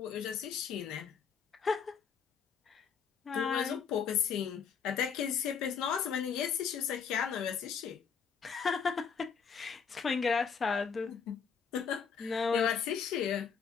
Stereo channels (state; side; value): quieter; right; 6.5 dB